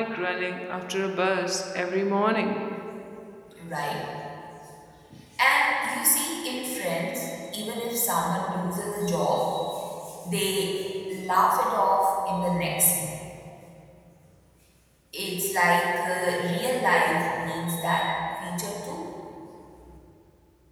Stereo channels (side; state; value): both; identical; correlation 1.00